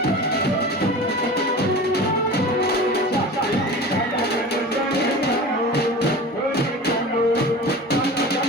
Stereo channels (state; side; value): normal; both; correlation 0.35